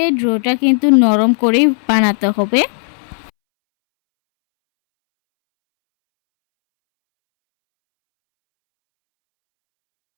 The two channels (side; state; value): right; silent; 69 dB below the other